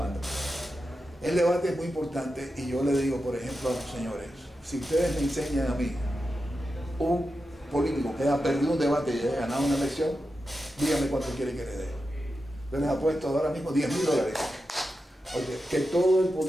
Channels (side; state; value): both; normal; correlation 0.90